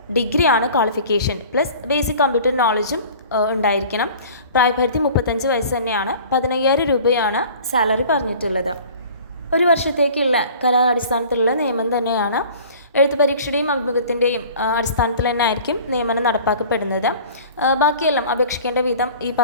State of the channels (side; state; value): both; inverted; correlation -0.45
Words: ഡിഗ്രിയാണ് ക്വാളിഫിക്കേഷൻ പ്ലസ് ബേസിക് കമ്പ്യൂട്ടർ നോളജും ഉണ്ടായിരിക്കണം. പ്രായപരിധി 35 വയസ്സ് തന്നെയാണ്. 15,000 രൂപയാണ് സാലറി പറഞ്ഞിട്ടുള്ളത്. 1 വർഷത്തേക്കുള്ള കരാർ അടിസ്ഥാനത്തിലുള്ള നിയമനം തന്നെയാണ്. എഴുത്ത് പരീക്ഷയുടെയും അഭിമുഖത്തിൻ്റെയും അടിസ്ഥാനത്തിൽ തന്നെ ആയിരിക്കും നിയമനം നടപ്പാക്കപ്പെടുന്നത്. ബാക്കിയെല്ലാം അപേക്ഷിക്കേണ്ട വിധം ഈ